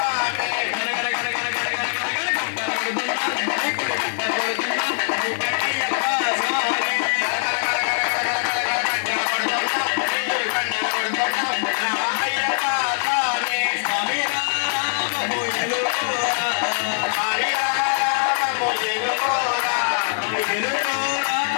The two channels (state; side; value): silent; right; digital silence